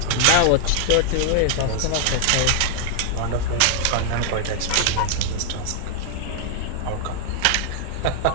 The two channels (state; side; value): different; both; correlation 0.00